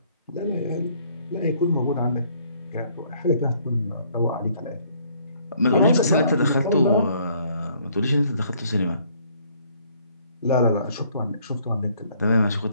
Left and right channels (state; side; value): inverted; both; correlation -0.63